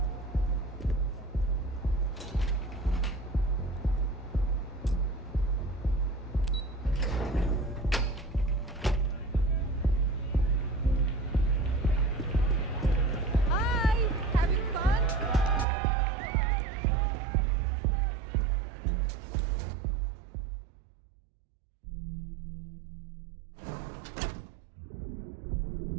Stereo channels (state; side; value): drops out; left; at 15.7 s